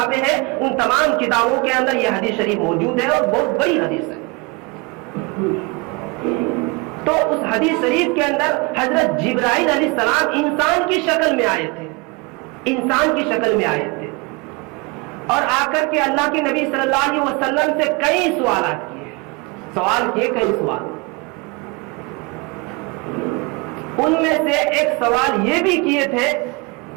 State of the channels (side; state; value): left; quieter; 27.6 dB